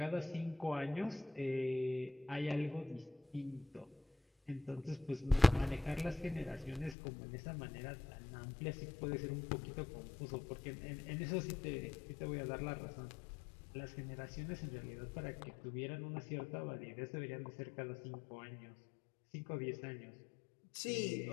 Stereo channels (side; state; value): right; drops out; at 7.0 s